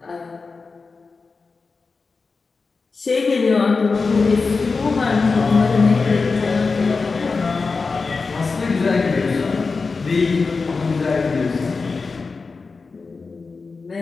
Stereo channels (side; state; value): right; quieter; 4.4 dB